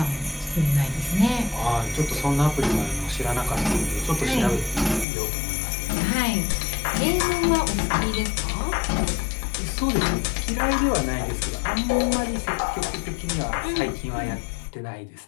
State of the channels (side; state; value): right; drops out; at 5.1 s